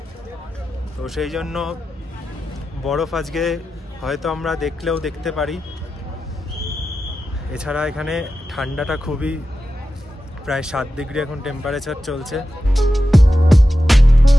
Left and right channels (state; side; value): normal; both; correlation 0.91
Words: তো সেই জন্য বরফ আজকে হয়তো আমরা দেখলেও দেখতে পারি। এছাড়া এখানে ঠান্ডাটা খুবই, প্রায় 7 ডিগ্রি এখন টেম্পারেচার চলছে।